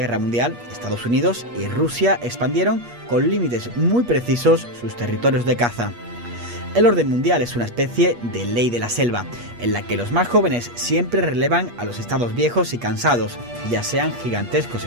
Mundial, Estados Unidos y Rusia expandieron con límites muy precisos sus territorios de caza. El orden mundial es una especie de ley de la selva, en la que los más jóvenes siempre relevan a los estados viejos y cansados, ya sean gigantescos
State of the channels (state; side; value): late; left; 8.4 ms